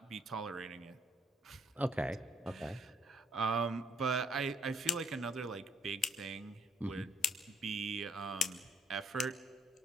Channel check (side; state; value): both; normal; correlation 0.67